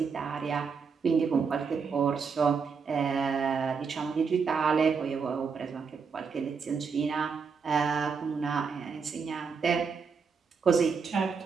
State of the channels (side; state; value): left; quieter; 5.6 dB